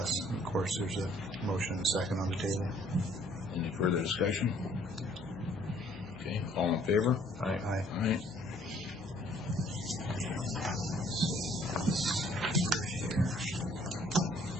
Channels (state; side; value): normal; both; correlation 0.60